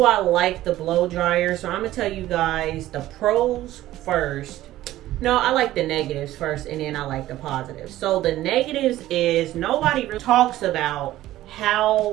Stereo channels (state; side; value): quieter; left; 14.9 dB